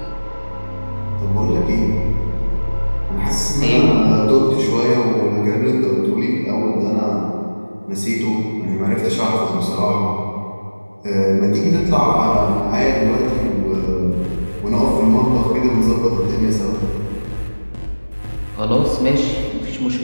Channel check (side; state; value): both; inverted; correlation -1.00